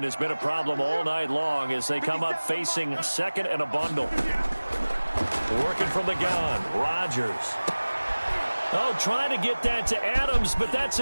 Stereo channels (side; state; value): both; inverted; correlation -1.00